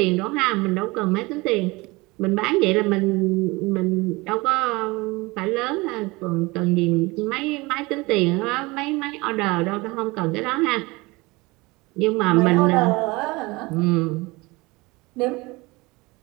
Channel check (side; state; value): left; quieter; 23.5 dB